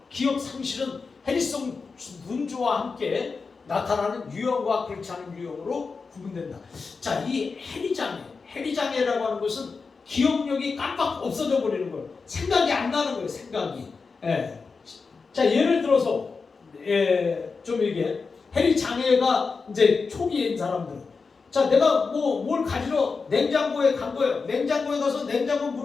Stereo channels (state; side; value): quieter; right; 4.7 dB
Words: 기억 상실은 해리성 눈조와 함께 나타나는 유형과 그렇지 않은 유형으로 구분된다. 자, 이 해리장애라고 하는 것은 기억력이 깜빡 없어져 버리는 거예요. 생각이 안 나는 거예요. 생각이. 자, 예를 들어서 좀 이게 해리장애가 이제 초기인 사람들. 자, 내가 뭘 가지러 냉장고에 간 거예요. 냉장고에 가서 냉장고